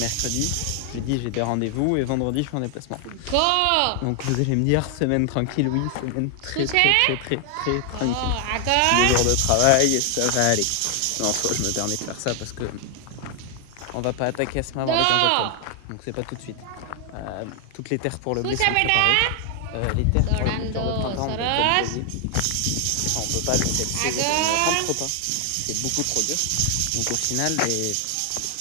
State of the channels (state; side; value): different; both; correlation 0.00